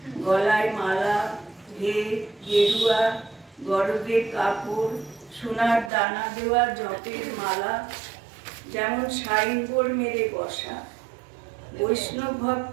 গলায় মালা, ভেদ, গেরুয়া, গরদের কাপড়, সোনার দানা দেওয়া জপের মালা, যেমন সাইনবোর্ড মেরে বসা। বৈষ্ণব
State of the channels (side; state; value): left; drops out; at 5.9 s